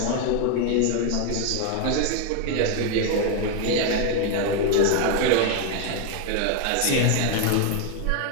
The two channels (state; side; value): different; both; correlation 0.01